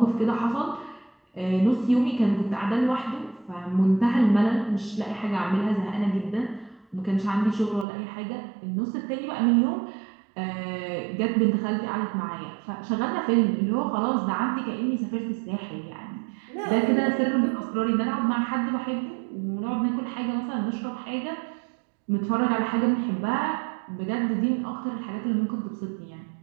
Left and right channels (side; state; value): left; drops out; at 7.9 s